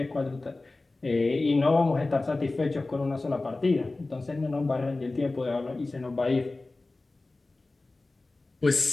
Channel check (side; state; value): right; quieter; 3.2 dB